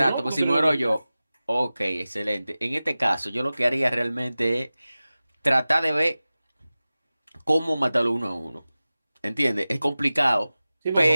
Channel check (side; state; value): both; inverted; correlation -0.96